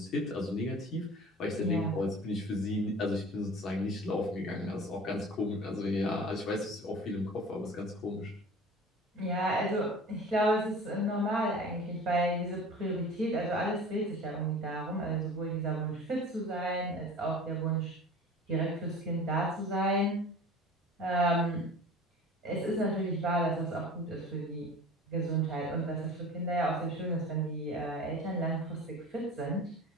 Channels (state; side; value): normal; both; correlation 0.40